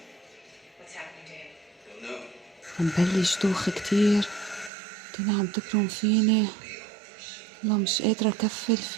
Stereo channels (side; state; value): left; drops out; at 4.7 s